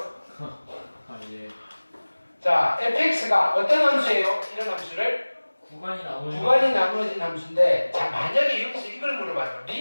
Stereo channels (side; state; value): both; inverted; correlation -1.00